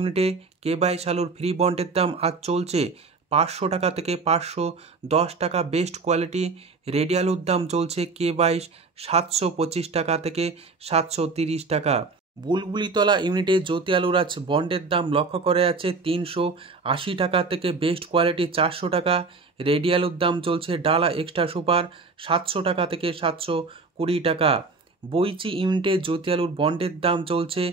কে-22 আলুর ফ্রি বন্ডের দাম আজ চলছে ৫০০ টাকা থেকে ৫১০ টাকা বেস্ট কোয়ালিটি। রেডি আলুর দাম চলছে কে-22 ৭২৫ টাকা থেকে ৭৩০ টাকা। বুলবুলিতলা ইউনিটে জ্যোতি আলুর আজ বন্ডের দাম লক্ষ্য করা যাচ্ছে ৩৮০ টাকা থেকে বেস্ট কোয়ালিটি ৪০০ টাকা। রেডি আলুর দাম চলছে ডালা এক্সট্রা সুপার ৭০০ টাকা থেকে ৭২০ টাকা। বইচি ইউনিটে জ্যোতি আলুর বন্ডের দাম চলছে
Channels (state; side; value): quieter; left; 4.1 dB